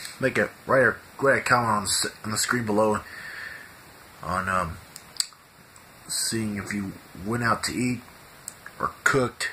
make a write a comment on the screen below on seeing if you went out to eat or cooked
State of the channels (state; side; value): identical; both; correlation 1.00